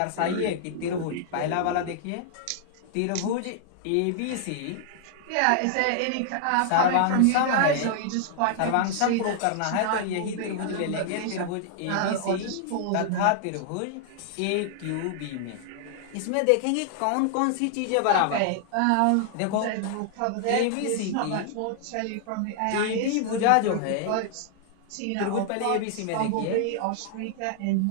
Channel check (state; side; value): different; both; correlation 0.00